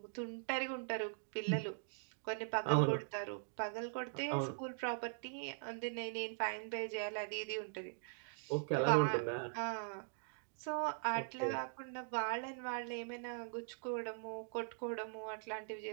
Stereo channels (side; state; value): left; silent; digital silence